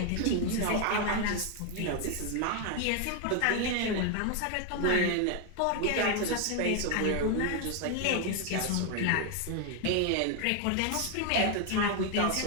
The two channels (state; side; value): different; both; correlation 0.01